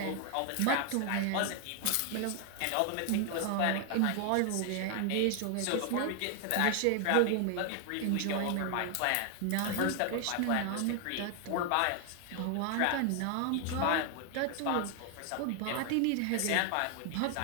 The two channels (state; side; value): different; both; correlation 0.00